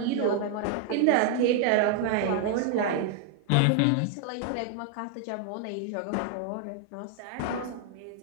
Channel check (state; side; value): different; both; correlation 0.00